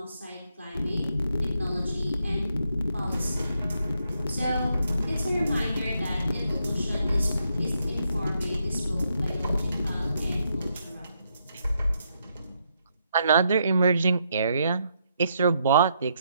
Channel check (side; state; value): both; inverted; correlation -0.77